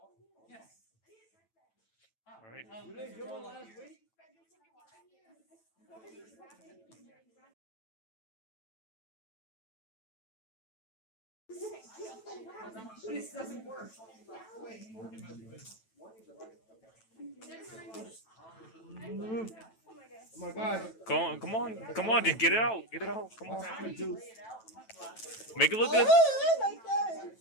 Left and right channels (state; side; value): late; right; 9.1 ms